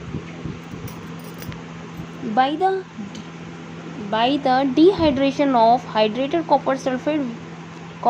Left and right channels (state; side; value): identical; both; correlation 1.00